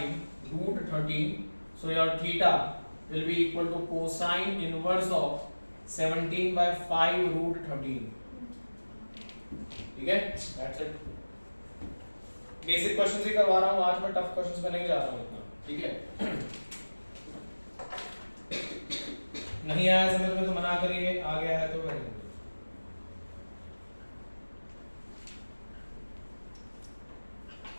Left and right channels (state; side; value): inverted; both; correlation -1.00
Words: root 13, so your theta will be equal to cosine inverse of 17 by 5 root 13, ठीक है। That's it। बेसिक क्वेश्चंस ही करवा रहा हूँ आज, मैं टफ क्वेश्चंस में नहीं जा रहा हूँ इतना, ठीक है। नहीं आया समझ में तो मना करिए, आ गया है तो करेंगे।